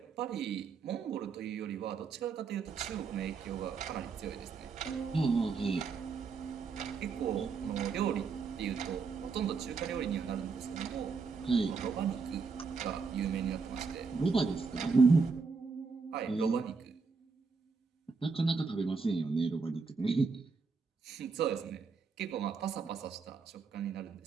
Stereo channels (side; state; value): left; quieter; 4.9 dB